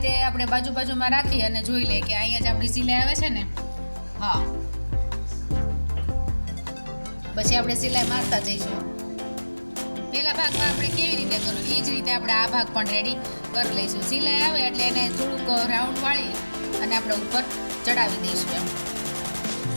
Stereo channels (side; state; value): both; inverted; correlation -1.00